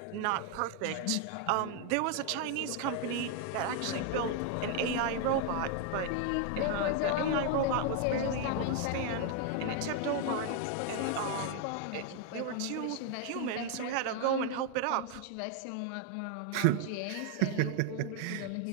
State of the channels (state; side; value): different; both; correlation 0.00